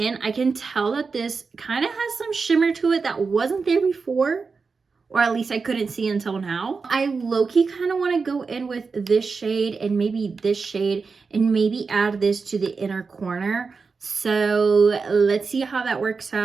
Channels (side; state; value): left; quieter; 4.8 dB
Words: I can tell that this kind of has some shimmer to it that wasn't there before, or at least I couldn't see until now. I low-key kind of want to go in with this shade and maybe this shade and maybe add this to the inner corner. So let's see how that works